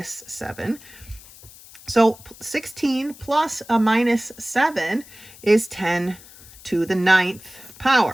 7. So 16 plus a minus 7 is 10 to the 9th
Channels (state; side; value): noise; left; hiss, 21 dB below the sound